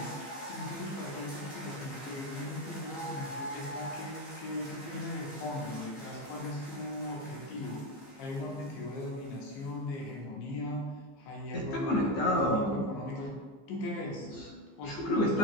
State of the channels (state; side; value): late; right; 15 ms